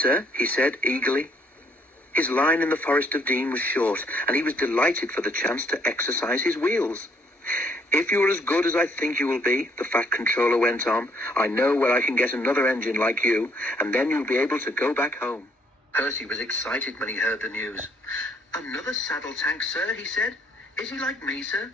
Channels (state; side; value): normal; both; correlation 0.67